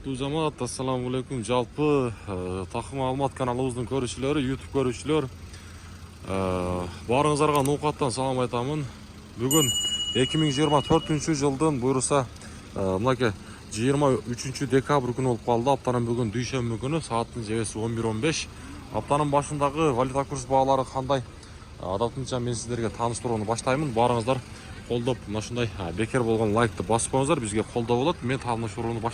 жамаат, ассаламу алейкум. Жалпы Такым Алмат каналыбыздын көрүүчүлөрү, YouTube көрүүчүлөр, баарыңыздарга ноокаттан салам айтамын. Бүгүн 2024 жылдын буюрса мынакей 23 декабрь күнү болуп калды. Аптанын бүгүн дүйшөмбү күнү, сааттын жебеси 11:15. Аптанын башындагы валюта курс баалары кандай? Адатынча мен сиздерге тааныштырууну баштаймын. Баарыңыздар колдоп, мына ушундай бекер болгон лайкты басып коюңуздар, бизге колдоо болот. Мен тааныштырууну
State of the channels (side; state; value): both; identical; correlation 1.00